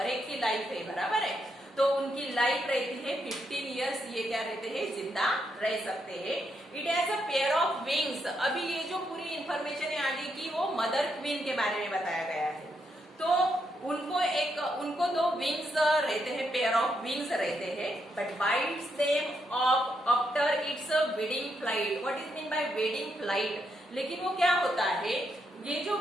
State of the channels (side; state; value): both; normal; correlation 0.79